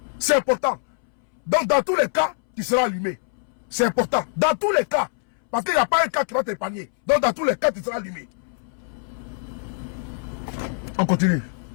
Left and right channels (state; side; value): silent; right; 63 dB below the other